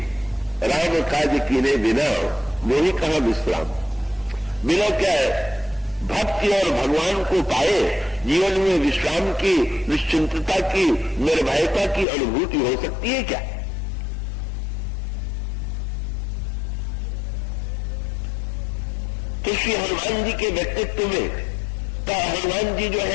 राम काज कीने बिना मोही कहां विश्राम। बिना क्या है भक्ति और भगवान को पाए जीवन में विश्राम की, निश्चिंतता की, निर्भयता की अनुभूति हो सकती है क्या। तो श्री हनुमान जी के व्यक्तित्व में तो हनुमान जी जो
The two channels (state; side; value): drops out; right; at 12.1 s